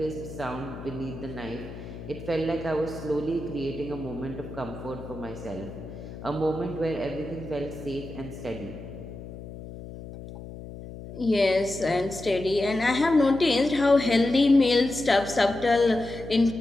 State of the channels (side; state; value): left; noise; hum, 12 dB below the sound